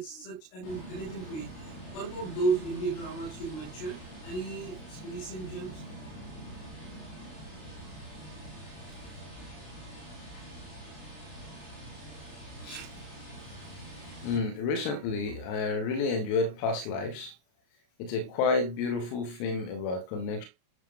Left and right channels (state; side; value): late; right; 33 ms